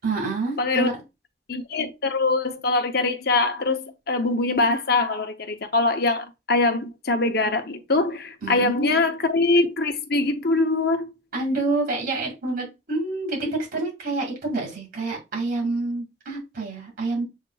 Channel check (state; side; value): normal; both; correlation 0.07